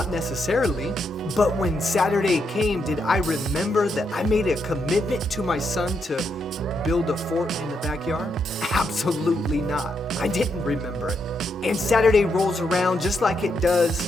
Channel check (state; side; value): normal; both; correlation 0.80